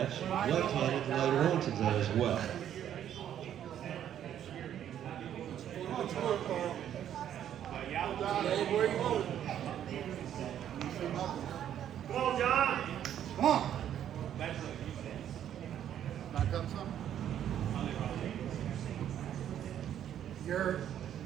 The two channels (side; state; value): left; quieter; 10.3 dB